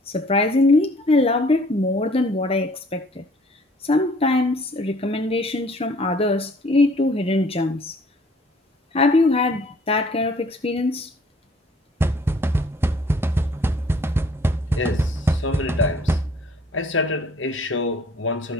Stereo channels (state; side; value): normal; both; correlation 0.57